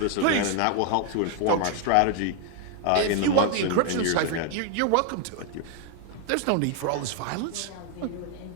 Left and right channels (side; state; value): both; different; correlation 0.00